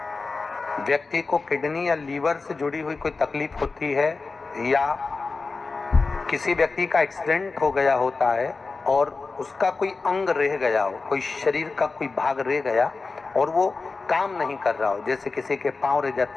व्यक्ति को किडनी या लीवर से जुड़ी हुई कोई तकलीफ होती है या किसी व्यक्ति का एक्सीडेंट हो गया होता है और उसका कोई अंग रह गया हो, कोई शरीर का कोई भाग रह गया और वो काम नहीं कर रहा हो, जैसे किसी के पांव रह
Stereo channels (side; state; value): right; quieter; 4.1 dB